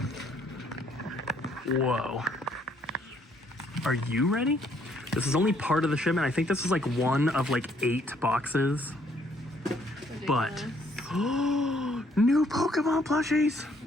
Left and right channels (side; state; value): both; normal; correlation 0.66